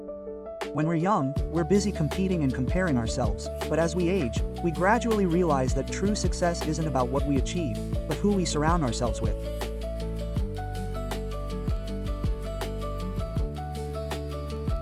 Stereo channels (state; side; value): identical; both; correlation 1.00